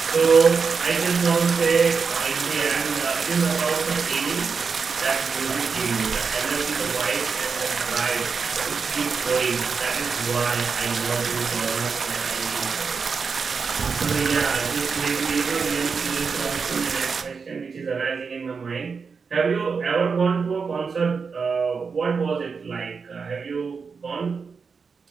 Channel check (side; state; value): left; quieter; 5.3 dB